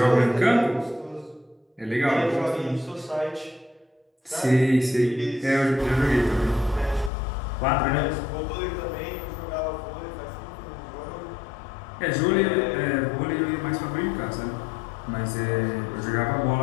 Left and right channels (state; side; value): drops out; right; at 7.1 s